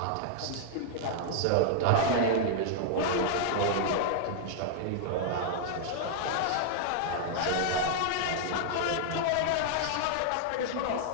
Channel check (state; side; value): different; both; correlation 0.00